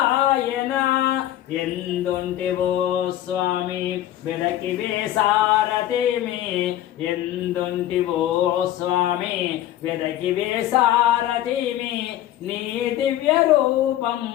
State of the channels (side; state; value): right; quieter; 13.1 dB